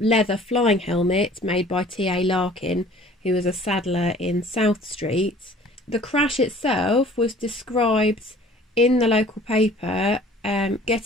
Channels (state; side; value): normal; both; correlation 0.51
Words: flying helmet made by T.A. Larkin, who was a saddler in South Street. The crash itself was described in the local paper.